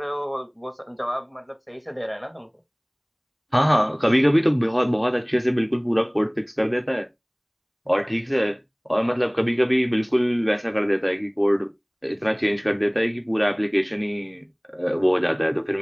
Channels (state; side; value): identical; both; correlation 1.00